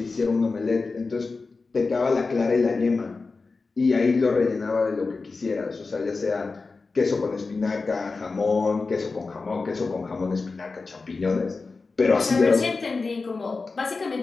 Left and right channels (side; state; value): right; quieter; 4.1 dB